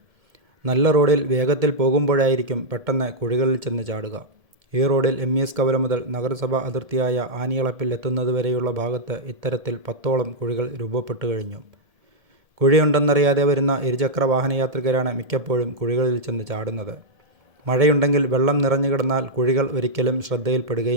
നല്ല റോഡിൽ വേഗത്തിൽ പോകുമ്പോഴായിരിക്കും പെട്ടെന്ന് കുഴികളിൽ ചെന്ന് ചാടുക. ഈ റോഡിൽ MES കവല മുതൽ നഗരസഭാ അതിർത്തിയായ ആനിയളപ്പിൽ എത്തുന്നതുവരെയുള്ള ഭാഗത്ത് ഇത്തരത്തിൽ 10ഓളം കുഴികൾ രൂപപ്പെട്ടു കഴിഞ്ഞു. കുഴിയുണ്ടെന്നറിയാതെ വരുന്ന ഇരുചക്ര വാഹനയാത്രികരാണ് മിക്കപ്പോഴും കുഴികളിൽ ചെന്ന് ചാടുന്നത്. മഴയുണ്ടെങ്കിൽ വെള്ളം നിറഞ്ഞു കിടന്നാൽ കുഴികൾ ഒരിക്കലും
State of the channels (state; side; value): late; left; 1.7 ms